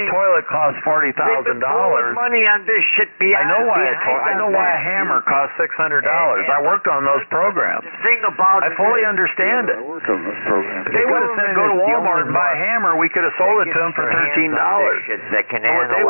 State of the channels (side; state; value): both; inverted; correlation -1.00